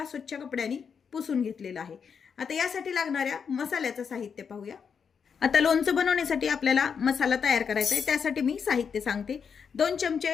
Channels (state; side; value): quieter; right; 6.5 dB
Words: स्वच्छ कपड्याने पुसून घेतलेलं आहे। आता यासाठी लागणाऱ्या मसाल्याचं साहित्य पाहूया। आता लोणचं बनवण्यासाठी आपल्याला मसाला तयार करायचा आहे, त्यासाठी मी साहित्य सांगते। 2 चमचे